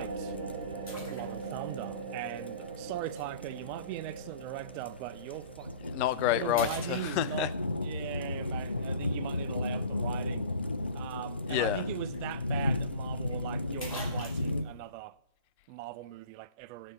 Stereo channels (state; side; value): inverted; both; correlation -0.43